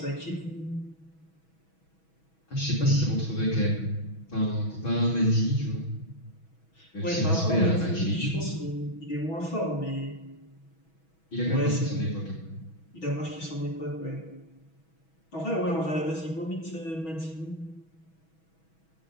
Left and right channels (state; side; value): late; right; 6.2 ms